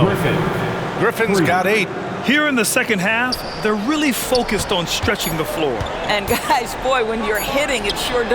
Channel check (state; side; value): identical; both; correlation 1.00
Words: Griffin's got 8. Here in the second half, they're really focused on stretching the floor. And guys, boy, when you're hitting, it sure